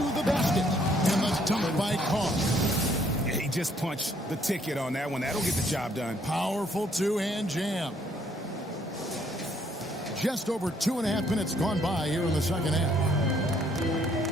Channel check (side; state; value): both; normal; correlation 0.66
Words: the basket. And the dunk by Carr. He just punched the ticket on that one. That'll get the job done. Powerful two-hand jam. Just over 2.5 minutes gone by here in the second half.